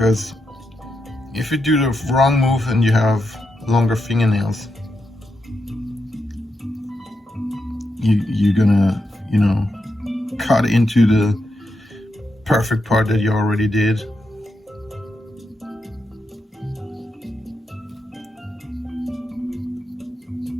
if you do the wrong move and you have longer fingernails, you're gonna, you know, cut into the perfect part that you already did.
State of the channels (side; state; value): both; normal; correlation 0.85